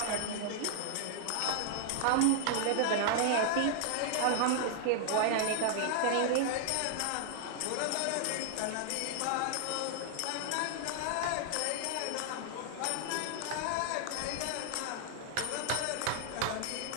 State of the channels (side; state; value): both; different; correlation -0.01